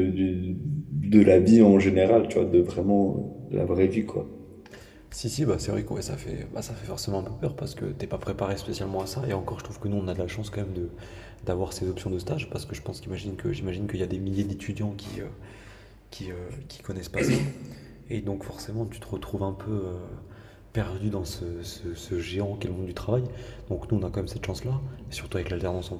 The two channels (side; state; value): both; identical; correlation 1.00